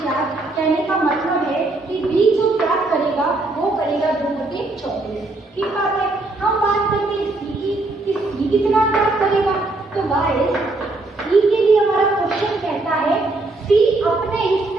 कहने का मतलब है कि बी जो त्याग करेगा वो करेगा 2/24। ठीक बात है। हम बात करते हैं सी की, कि सी कितना त्याग करेगा। तो गाइस सी के लिए हमारा क्वेश्चन कहता है सी अपने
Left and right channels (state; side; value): quieter; left; 3.1 dB